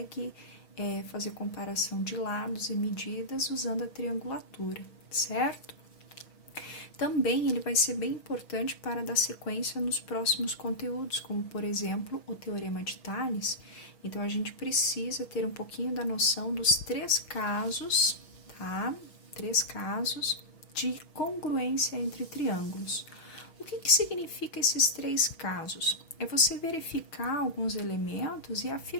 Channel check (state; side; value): late; right; 6.3 ms